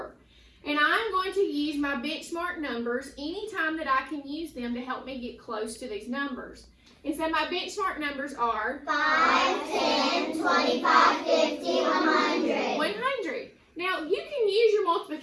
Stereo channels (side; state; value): both; identical; correlation 1.00